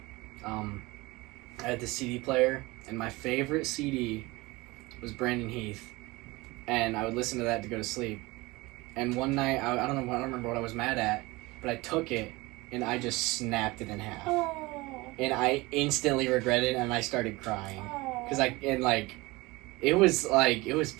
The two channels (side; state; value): left; quieter; 22.3 dB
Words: I had the CD player, and my favorite CD was Brandon Heath, and I would listen to that to go to sleep. And one night, I don't remember what I was mad at, but I took it, and I just snapped it in half. Oh. And I instantly regretted it, and I started crying. Oh. Because it was